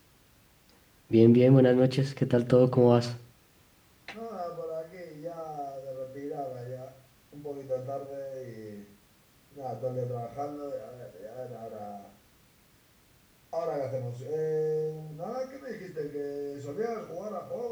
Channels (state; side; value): identical; both; correlation 1.00